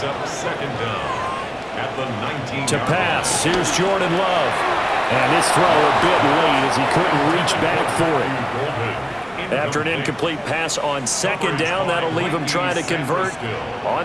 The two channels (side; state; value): both; identical; correlation 1.00